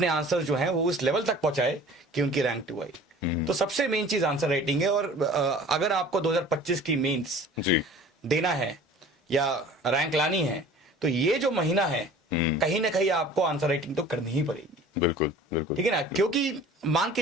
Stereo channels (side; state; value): both; normal; correlation 0.45